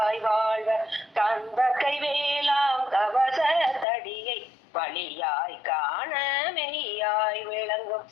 வாழ்வர் கந்தக்கை வேளாம் கவச தடியை வழியாய் காண மெய்யாய் விளங்கும்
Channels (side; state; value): right; drops out; at 3.9 s